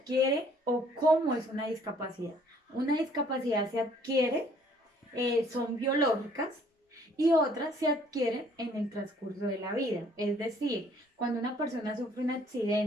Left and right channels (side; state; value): both; normal; correlation 0.60